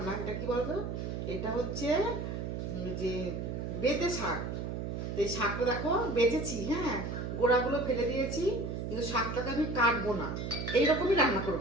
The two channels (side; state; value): right; noise; hum, 4 dB below the sound